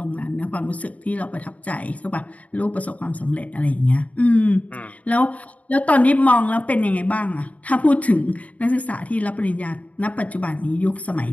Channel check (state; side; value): late; right; 0.069 ms